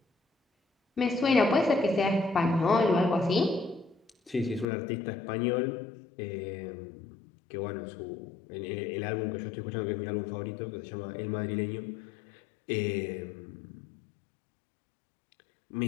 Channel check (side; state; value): right; drops out; at 4.7 s